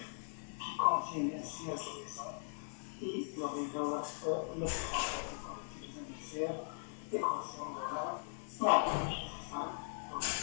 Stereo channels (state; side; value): silent; right; 51 dB below the other